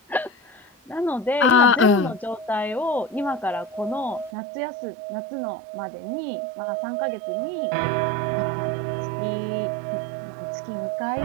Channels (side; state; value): left; drops out; at 4.3 s